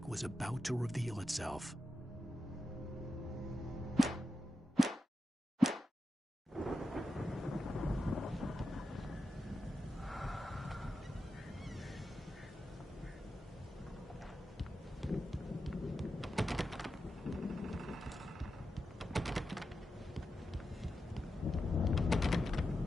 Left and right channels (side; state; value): both; normal; correlation 0.90